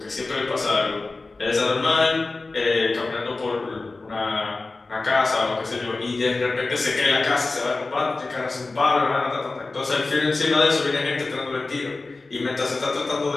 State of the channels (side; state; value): right; quieter; 3.5 dB